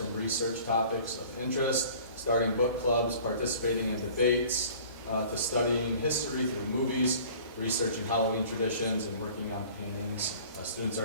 research topics of interest, starting book clubs, participating in debates, to studying history through movies, researching Halloween traditions, and working on paintings. Students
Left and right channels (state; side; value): inverted; both; correlation -0.48